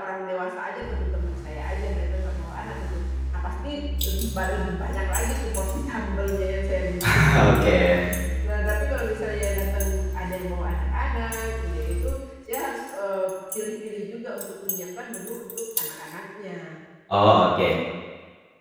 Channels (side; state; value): both; identical; correlation 1.00